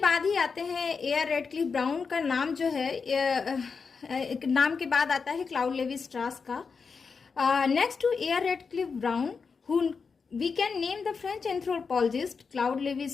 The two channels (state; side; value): quieter; right; 5.3 dB